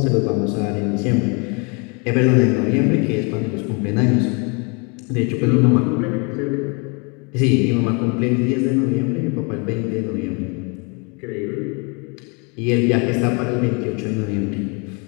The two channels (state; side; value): quieter; right; 32.7 dB